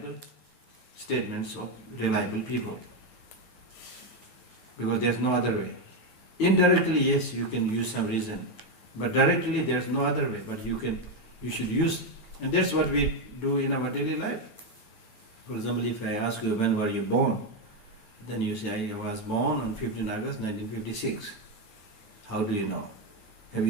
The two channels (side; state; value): right; late; 9.2 ms